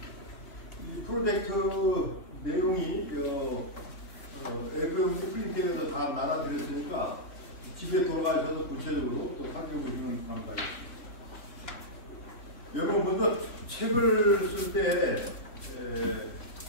이 프로젝트 내용이 앱을 프린트해서 다 나눠드렸으니까 집에 돌아가셔서 구체적으로 또 살펴보시면 감사하겠습니다. 여러분 먼저 책을 쓸 때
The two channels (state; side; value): late; right; 3.2 ms